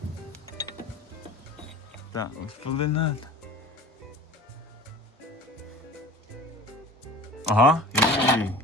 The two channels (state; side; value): normal; both; correlation 0.41